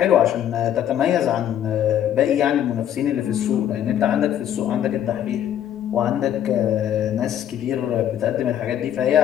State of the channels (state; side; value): quieter; right; 10.5 dB